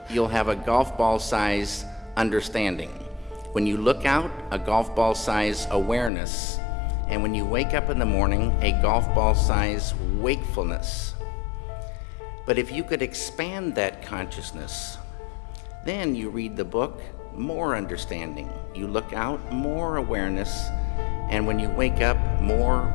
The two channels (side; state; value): right; drops out; at 6.1 s